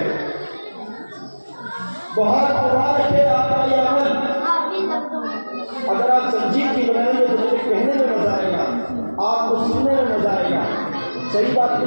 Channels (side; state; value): both; inverted; correlation -1.00